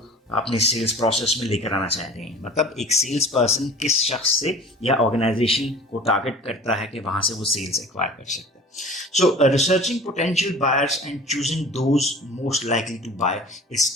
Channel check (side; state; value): both; normal; correlation 0.42